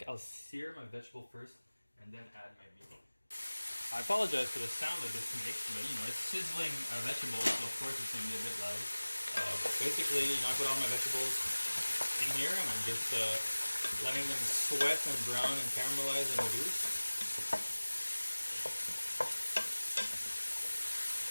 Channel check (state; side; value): inverted; both; correlation -1.00